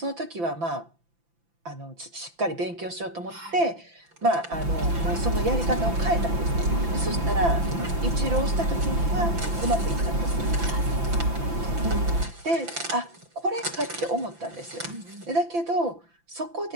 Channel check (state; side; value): late; left; 5.9 ms